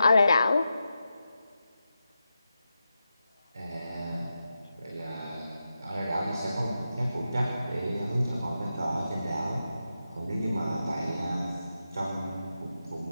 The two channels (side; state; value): both; inverted; correlation -0.89